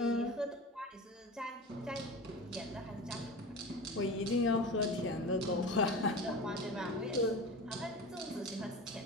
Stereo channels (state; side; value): normal; both; correlation 0.31